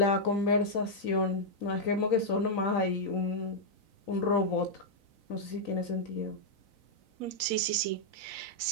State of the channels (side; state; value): right; late; 4.0 ms